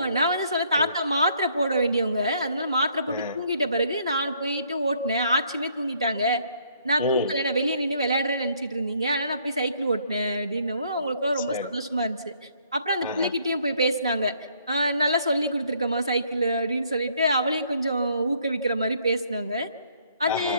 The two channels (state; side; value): inverted; both; correlation -0.66